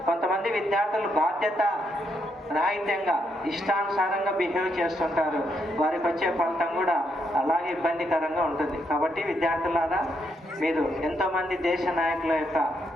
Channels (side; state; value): both; normal; correlation 0.78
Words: కొంతమంది విద్యార్థులు బాధ్యత రాహిత్యంగా ఇష్టానుసారంగా బిహేవ్ చేస్తుంటారు, వారికి వచ్చే ఫలితం కూడా అలాగే ఇబ్బందికరంగా ఉంటుంది. కాబట్టి విద్యార్థులారా, మీరు ఎంతోమంది దేశ నాయకుల యొక్క